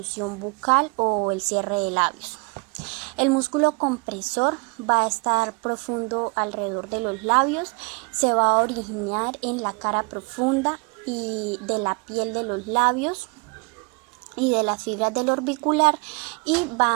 bucal o el cierre de labios. El músculo compresor va a estar profundo alrededor de los labios, se va a originar en la cara profunda y de la piel de los labios y de las fibras del orbicular y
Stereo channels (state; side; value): quieter; left; 30.8 dB